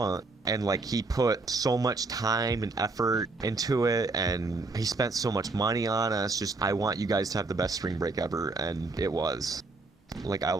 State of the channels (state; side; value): quieter; left; 3.5 dB